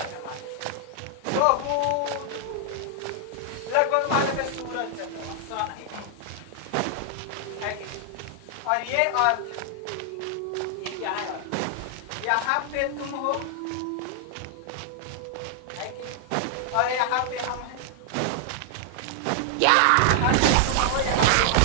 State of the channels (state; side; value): different; both; correlation 0.00